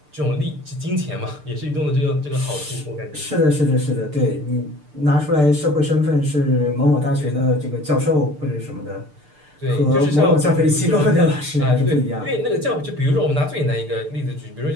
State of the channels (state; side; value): late; left; 6.7 ms